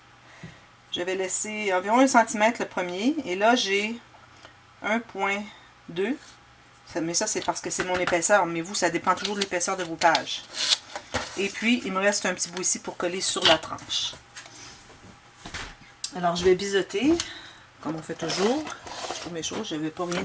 j'avais laissé environ 1 cm le premier. Et là, j'ai 1,2. Mais ça, c'est parce que c'est mon épaisseur. Mais vous, ça dépend toujours de l'épaisseur de vos pages. Et puis, il me reste un petit bout ici pour coller sur la tranche. Alors, je vais biseauter, comme on fait toujours. Je trouve mes choses. Je n'avais pas rien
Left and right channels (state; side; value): identical; both; correlation 1.00